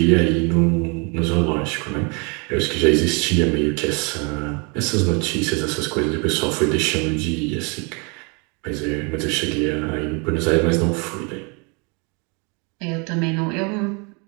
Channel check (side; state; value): left; quieter; 32.2 dB